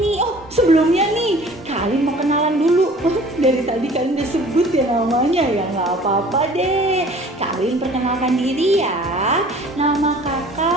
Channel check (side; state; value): both; normal; correlation 0.49